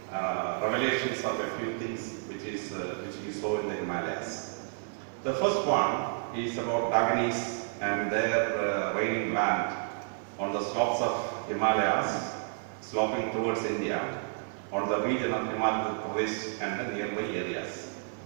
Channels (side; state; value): left; silent; digital silence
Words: revelations of a few things which he saw in the Himalayas. The first one is about Daganis and their reigning land on the slopes of Himalayas, sloping towards India, on the region of Himachal Pradesh and the nearby areas.